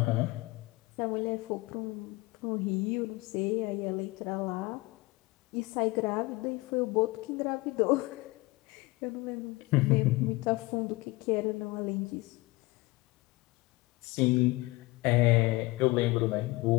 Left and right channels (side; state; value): right; quieter; 22.0 dB